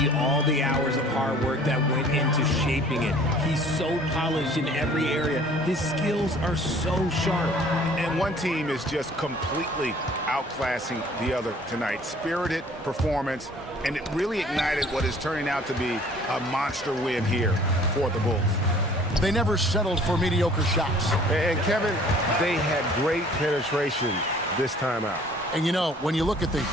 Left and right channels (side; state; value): both; normal; correlation 0.53